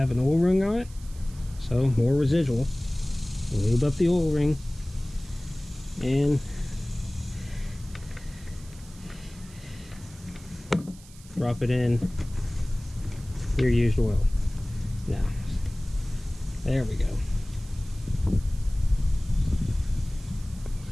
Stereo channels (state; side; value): noise; right; hiss, 22 dB below the sound